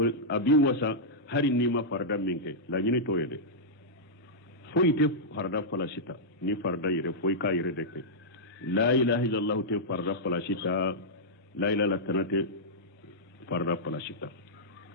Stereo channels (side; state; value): both; normal; correlation -0.10